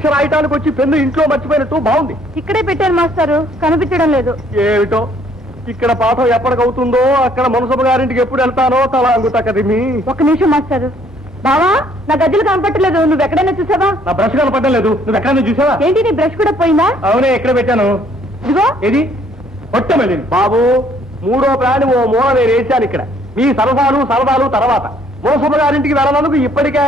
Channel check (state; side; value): normal; both; correlation 0.63